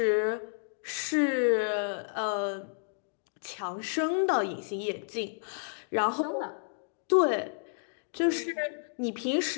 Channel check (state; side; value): silent; right; digital silence